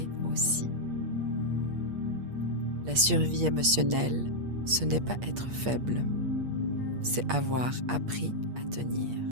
aussi. La survie émotionnelle, ce n'est pas être faible, c'est avoir appris à tenir.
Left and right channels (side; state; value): left; late; 8.5 ms